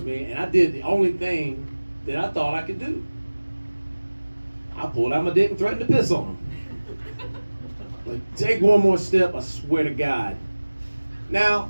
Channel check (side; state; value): both; inverted; correlation -1.00